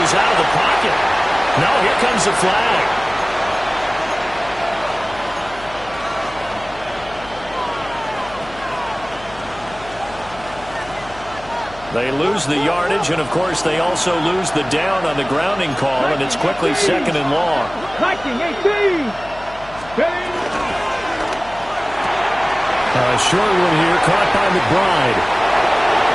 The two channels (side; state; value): left; noise; hum, 19 dB below the sound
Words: was out of the pocket. No, here comes the flag. They lose the yardage, and, of course, they also lose the down on the grounding call, and it's quickly 2nd and long. 19, 18. A short one here, caught by McBride.